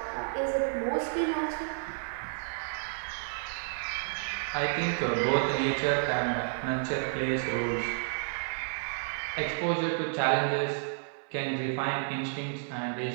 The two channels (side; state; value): left; silent; 57 dB below the other